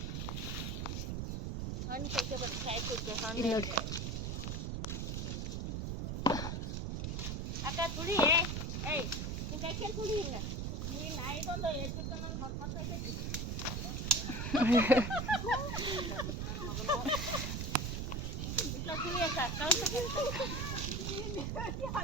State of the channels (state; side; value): noise; right; rumble, 2 dB below the sound